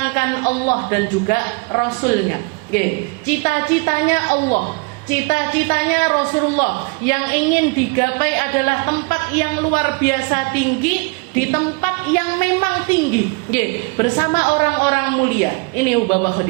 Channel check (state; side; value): quieter; left; 29.5 dB